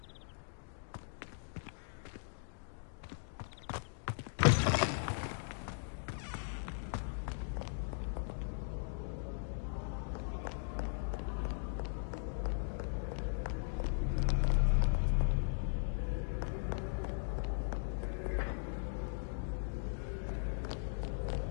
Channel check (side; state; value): right; silent; digital silence